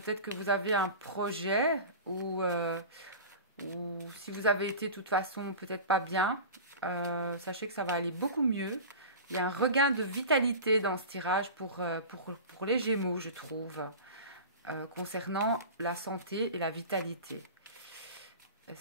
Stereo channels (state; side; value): inverted; both; correlation -0.33